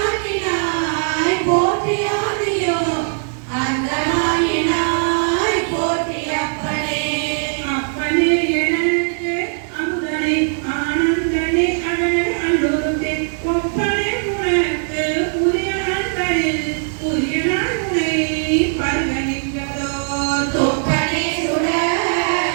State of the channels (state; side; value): silent; left; 65 dB below the other